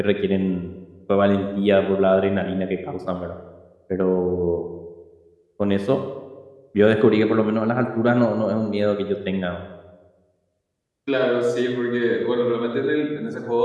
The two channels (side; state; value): both; identical; correlation 1.00